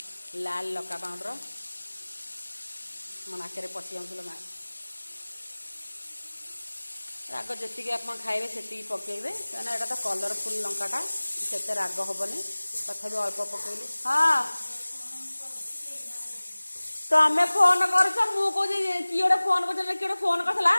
लाल लका पाउडर मो नाक पशि जाऊँ राग जी आप खाइबे से पकेबे क्या यहाँ तो कलरफुल लंकाटा से राग हेनी तथा अल्प पकेली हाँ तमें फोन कर किए गोटे फोन कर किए फोन करला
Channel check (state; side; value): inverted; both; correlation -1.00